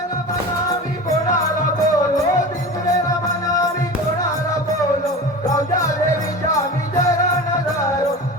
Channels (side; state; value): both; normal; correlation 0.32